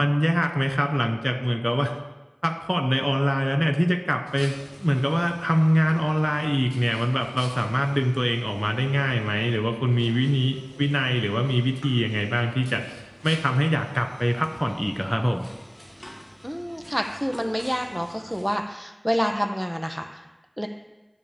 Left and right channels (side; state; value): both; identical; correlation 1.00